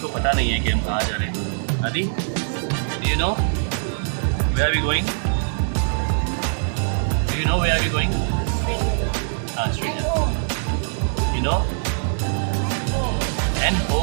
पता नहीं है कि हम कहाँ जा रहे हैं। Aadi, you know where are we going? Do you know where are we going? Straight. You know? And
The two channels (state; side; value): silent; left; digital silence